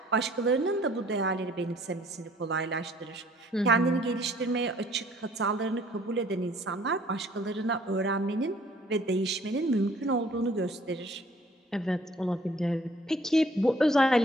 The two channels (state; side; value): normal; both; correlation 0.58